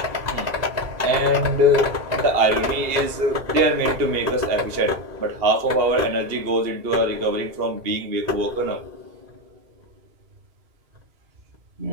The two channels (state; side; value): late; left; 2.8 ms